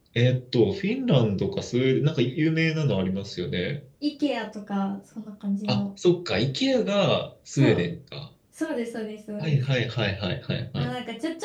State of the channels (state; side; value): identical; both; correlation 1.00